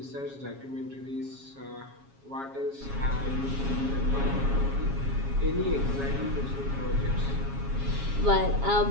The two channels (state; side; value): late; left; 7.3 ms